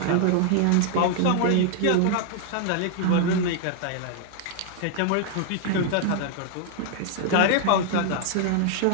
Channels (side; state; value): both; different; correlation 0.00